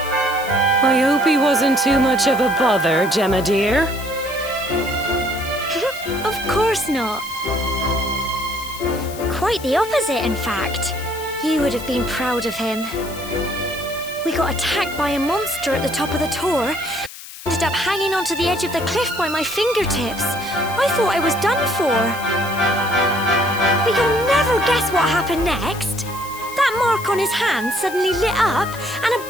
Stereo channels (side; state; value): left; noise; hiss, 14 dB below the sound